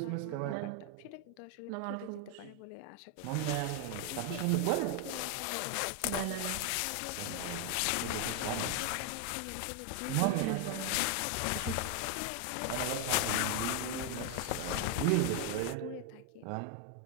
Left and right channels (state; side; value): different; both; correlation 0.01